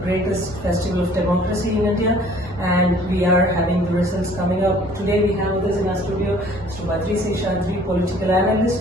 festival of democracy in India, and we are having the results coming up. Today we have with us in our studio Mr. Badri, Seshadri, political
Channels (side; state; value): both; normal; correlation 0.54